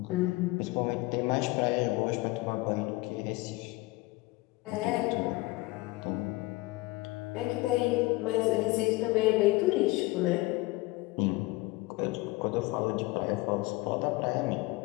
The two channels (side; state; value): right; quieter; 21.6 dB